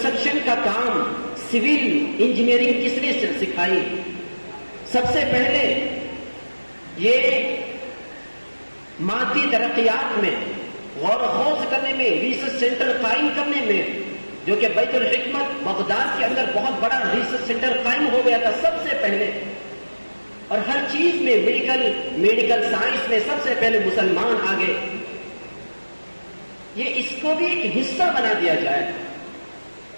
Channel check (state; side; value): inverted; both; correlation -1.00